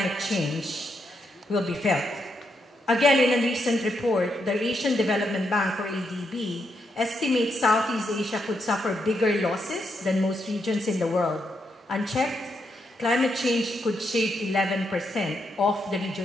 change will be felt. Again, in a recent report, the Asian Development Bank, or ADB, estimates Southeast Asia could suffer bigger losses than most regions in the world. Unchecked, climate change could shave 11% of the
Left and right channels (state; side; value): normal; both; correlation 0.80